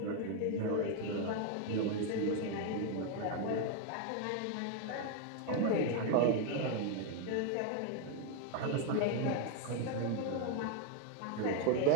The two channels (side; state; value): both; different; correlation 0.01